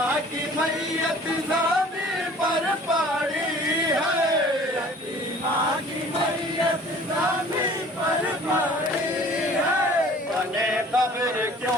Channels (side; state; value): both; normal; correlation 0.49